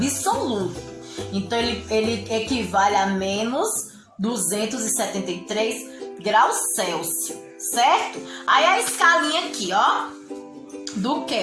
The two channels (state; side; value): identical; both; correlation 1.00